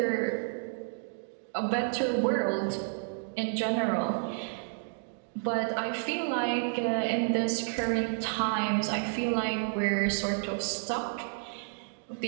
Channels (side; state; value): left; silent; digital silence